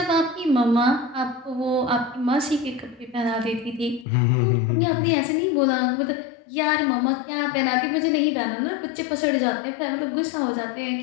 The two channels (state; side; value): drops out; right; at 4.0 s